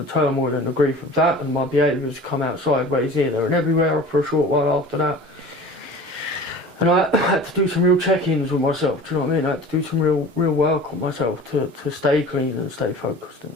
turmoil and the grief of that, and my behaviours come out sideways here, there and everywhere for a short while after that. And I had to do some real check-ins with myself, do you know what I mean? I had to do some real work on myself to stay clean and stay focused in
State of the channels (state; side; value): normal; both; correlation 0.40